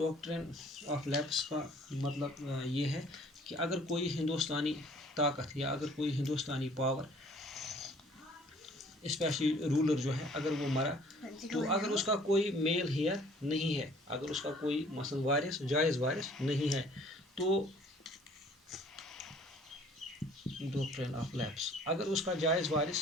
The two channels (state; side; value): normal; both; correlation 0.55